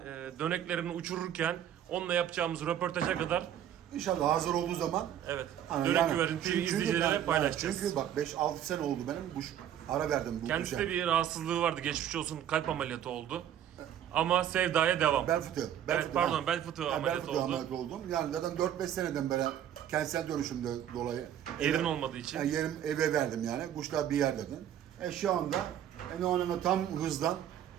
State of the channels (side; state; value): left; quieter; 10.4 dB